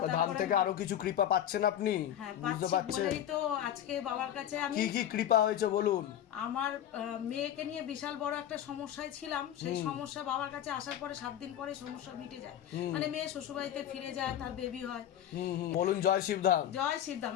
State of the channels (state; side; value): quieter; right; 10.9 dB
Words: ধাম থেকে আরো কিছু কৃপা পাচ্ছেন আপনি? হ্যাঁ বুঝতে পাচ্ছি পারছেন? বলেই তো আজকে বাবার কাছে আমি। কি কি কৃপা হয়েছে বলুন। আমার মেয়েকে নিয়ে বিশাল বড় একটা সমস্যায় ছিলাম, সেই সমস্যা বাবার কাছে আসার পরে 7 দিন পরে সমস্যা মিটে যায়। মানে মেয়ে শ্বশুরবাড়িতে ফিরে যায়, তার বেবি হয়। বলুন জয় শিবধাম। জয় শিবধাম।